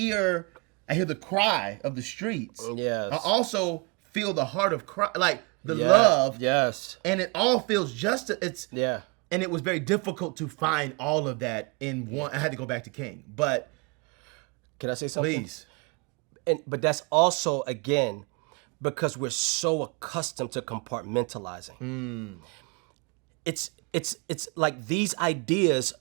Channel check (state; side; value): quieter; left; 29.6 dB